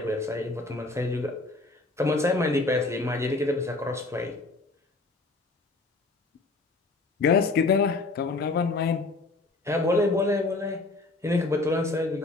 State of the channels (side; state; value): right; quieter; 3.3 dB